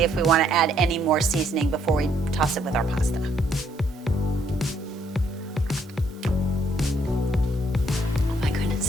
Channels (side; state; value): both; normal; correlation 0.69